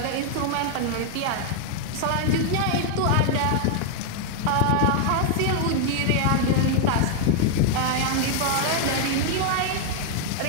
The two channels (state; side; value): different; both; correlation 0.00